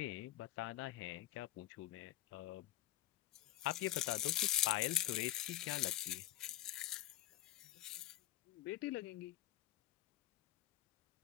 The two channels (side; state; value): right; quieter; 14.4 dB